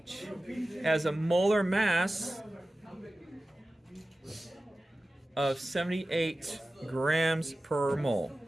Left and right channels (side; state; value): both; normal; correlation 0.95